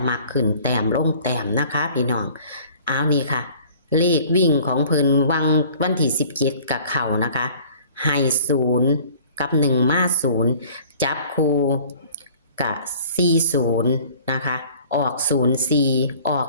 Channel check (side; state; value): both; inverted; correlation -0.51